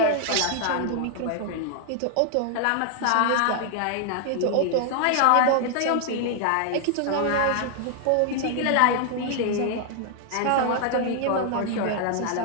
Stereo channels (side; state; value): both; different; correlation 0.00